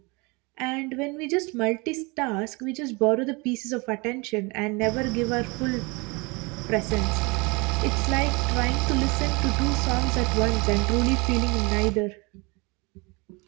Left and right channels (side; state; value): left; quieter; 27.6 dB